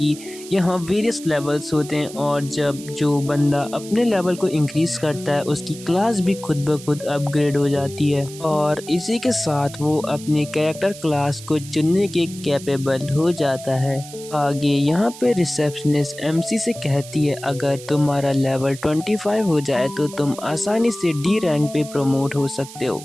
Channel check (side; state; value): right; noise; hiss, 16 dB below the sound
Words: यहाँ वेरियस लेवल्स होते हैं और जब जो बंदा अपने लेवल को इंक्रीज करता है उसकी क्लास भी खुद ब खुद अपग्रेड हो जाती है और इसी के साथ वो अपनी कैरेक्टर क्लास को चुनने के कैपेबल हो जाता है। आगे यहाँ पे रिसेप्शनिस्ट एमसी से कहती है अगर तुम्हारा लेवल 25 हो जाए तो तुम आसानी से डी रैंक पे प्रमोट हो सकते हो।